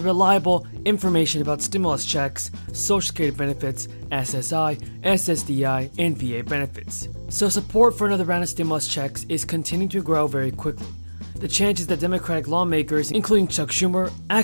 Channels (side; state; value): both; inverted; correlation -1.00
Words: reliable information about stimulus checks, Social Security benefits, SSI, SSDI, and VA benefits. So support for another round of stimulus checks is continuing to grow very quickly. The chances that Democratic lawmakers, including Chuck Schumer,